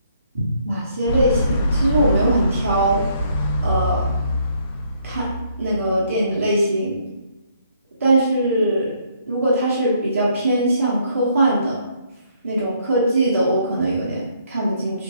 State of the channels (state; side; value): inverted; both; correlation -0.68